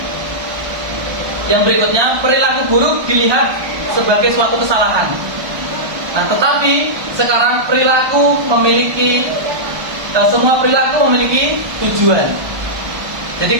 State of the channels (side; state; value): left; late; 1.2 ms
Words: Yang berikutnya, perilaku buruk dilihat sebagai suatu kesalahan. Nah, tetapi sekarang semua perilaku memiliki tujuan.